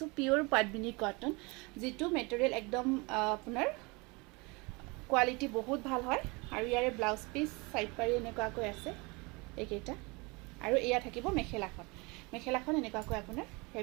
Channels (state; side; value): quieter; left; 27.1 dB